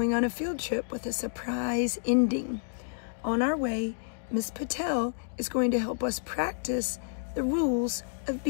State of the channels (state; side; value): silent; right; digital silence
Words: on a field trip with a surprise ending. On our way, Miss Patel is going to help us practice the rules of